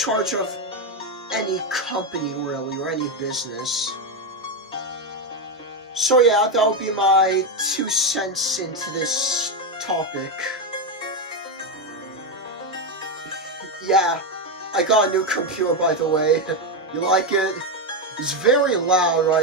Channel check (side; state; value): both; normal; correlation 0.08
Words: of any company, really, or any business. So yeah, that'll be my 2 cents into this topic. Yeah, I got a new computer, by the way. You like it? It's very loud